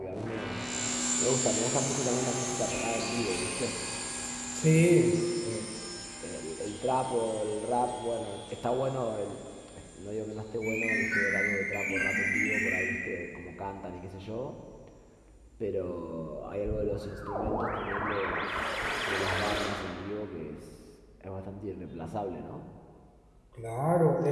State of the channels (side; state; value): both; identical; correlation 1.00